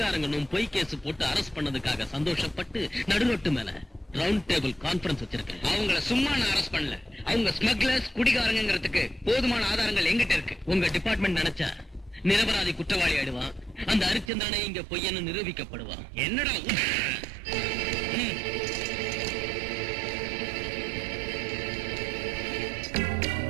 பொய் கேஸ் போட்டு அரெஸ்ட் பண்ணதுக்காக சந்தோஷப்பட்டு நடுரோட்டு மேல ரவுண்ட் டேபிள் கான்பரன்ஸ் வச்சிருக்கேன். அவங்கள சும்மா நான் அரெஸ்ட் பண்ணல. அவங்க ஸ்மக்லர்ஸ் குடிகாரங்கிறதுக்கு போதுமான ஆதாரங்கள் எங்கிட்ட இருக்கு. உங்க டிபார்ட்மெண்ட் நினைச்சா நிரபராதி குற்றவாளி ஆயிடுவான். அந்த ஹரிச்சந்திரனே இங்க பொய்யன்னு நிரூபிக்கப்படுவான். என்னடா?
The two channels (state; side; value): drops out; left; at 14.3 s